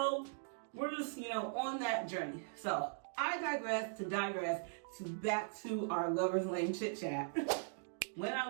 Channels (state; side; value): silent; left; digital silence